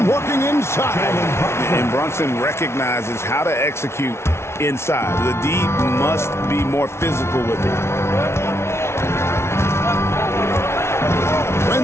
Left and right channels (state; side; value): late; right; 0.13 ms